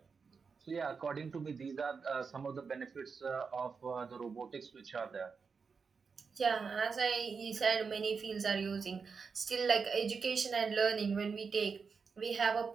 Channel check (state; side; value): quieter; left; 5.4 dB